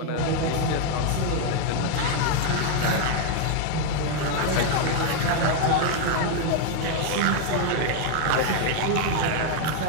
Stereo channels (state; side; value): different; both; correlation 0.00